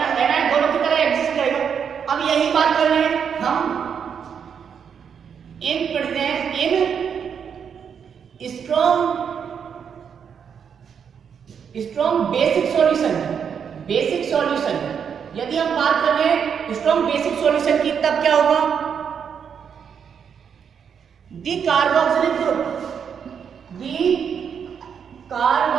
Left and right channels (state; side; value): quieter; left; 7.3 dB